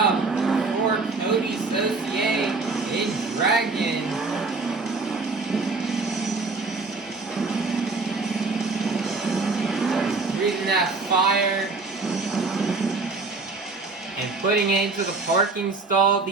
for Coty Saucier in Dragon. Breathing that fire and putting it into the parking stall.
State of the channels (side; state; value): left; quieter; 3.9 dB